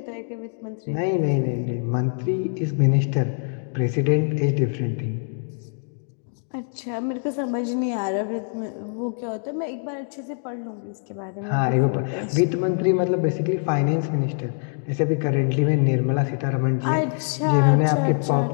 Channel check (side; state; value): right; silent; 63 dB below the other